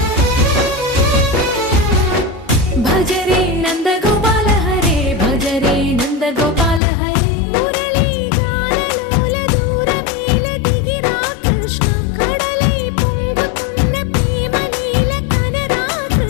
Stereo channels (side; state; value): right; drops out; at 6.8 s